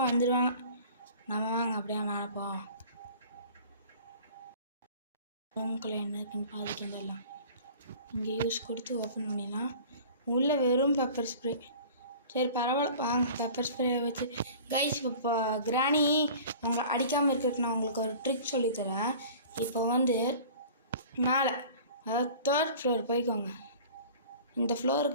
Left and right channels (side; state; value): both; inverted; correlation -0.43